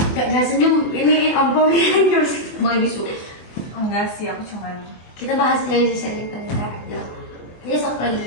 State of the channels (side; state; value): right; late; 24 ms